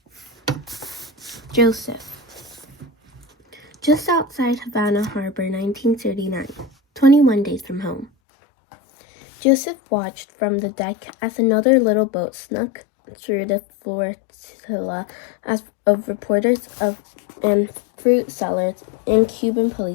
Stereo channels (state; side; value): drops out; right; at 8.1 s